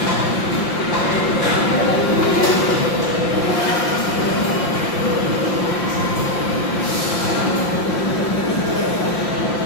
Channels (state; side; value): late; right; 5.8 ms